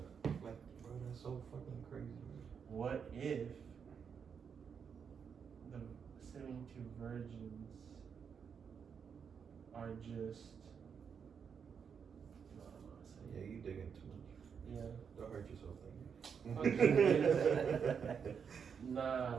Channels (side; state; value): left; quieter; 6.8 dB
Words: like bro, that's so fucking crazy. Man. What if the 72 virgins are just? No, I'm not saying. Yeah, you digging too much. Yeah. Don't hurt yourself, Nah,